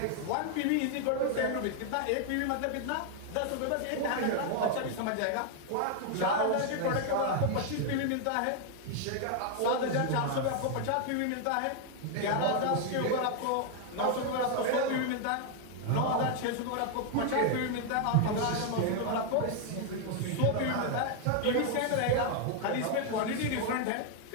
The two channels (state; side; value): different; both; correlation 0.00